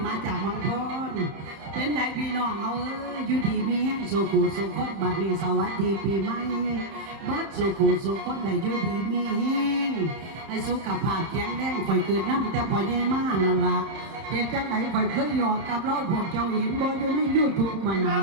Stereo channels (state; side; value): late; left; 30 ms